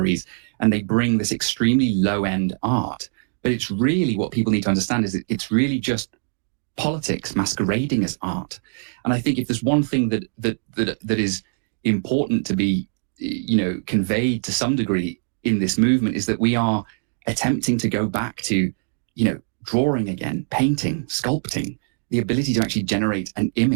and they bring this extremely low-end art. But it's really, what people need to understand is that it's really just politics masquerading as art. And I think if there's one thing that is important to be, conveyed to some degree in this movement, is that we are attempting to go back to, drawing again, painting, sculpting, the ability to actually generate an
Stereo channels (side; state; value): left; silent; 64 dB below the other